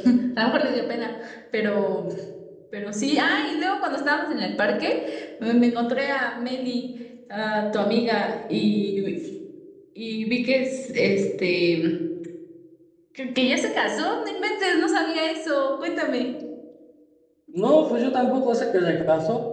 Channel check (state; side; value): identical; both; correlation 1.00